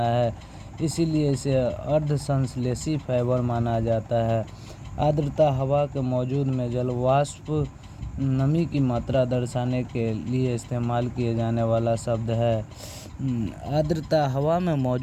है, इसीलिए इसे अर्धसंश्लेषी फाइबर माना जाता है। आर्द्रता हवा के मौजूद में जलवाष्प नमी की मात्रा दर्शाने के लिए इस्तेमाल किए जाने वाला शब्द है। आर्द्रता हवा में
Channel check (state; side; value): identical; both; correlation 1.00